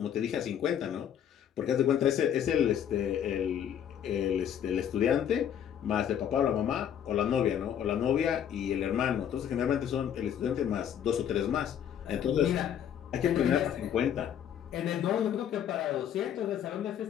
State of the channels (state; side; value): quieter; right; 9.4 dB